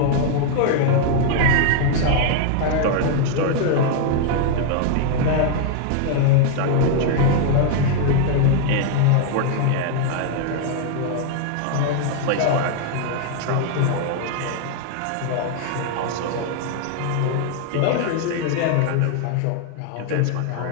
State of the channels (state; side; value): different; both; correlation 0.00